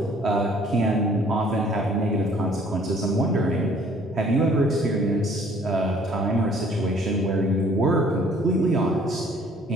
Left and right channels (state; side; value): normal; both; correlation 0.57